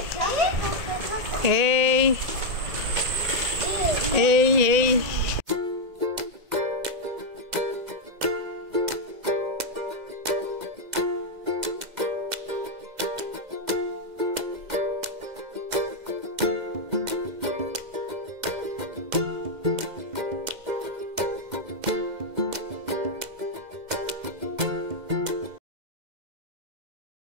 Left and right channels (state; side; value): late; left; 2.0 ms